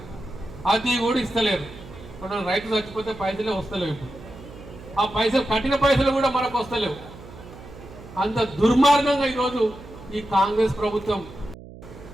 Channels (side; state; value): right; noise; hum, 17 dB below the sound